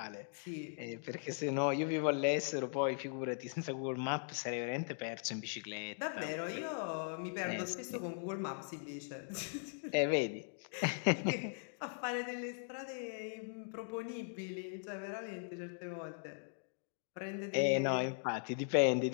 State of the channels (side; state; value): right; silent; digital silence